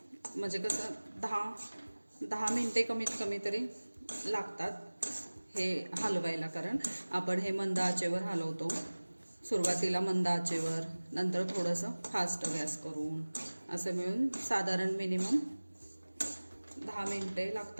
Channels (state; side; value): inverted; both; correlation -1.00